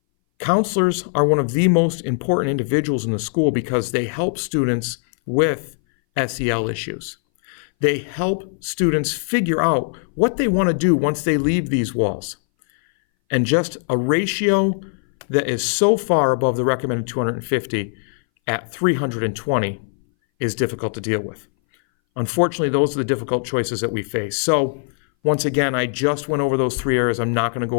Counselors are one of the most important individuals in the school because they help students with SEL issues. They help students figure out what they want to do once they leave these walls. And just a ratio that is so far above the recommended 250 at 320 is difficult to deal with. Unfortunately, those are the difficult choices that we face. So once again, I just went over those three areas. I'm not going to go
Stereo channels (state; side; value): silent; right; 61 dB below the other